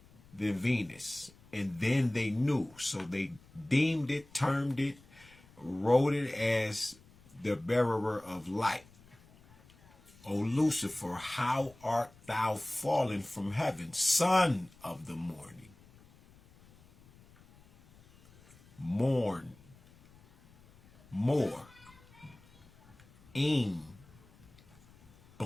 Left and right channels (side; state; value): left; noise; rumble, 26 dB below the sound